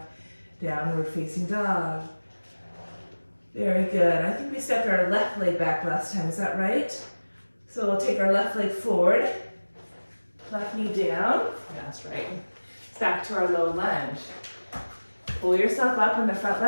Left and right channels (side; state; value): both; inverted; correlation -1.00